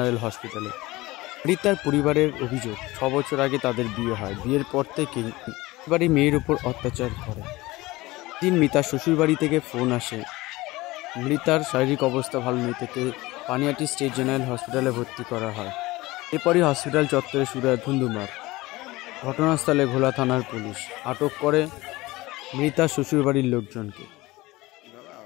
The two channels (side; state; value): right; quieter; 20.0 dB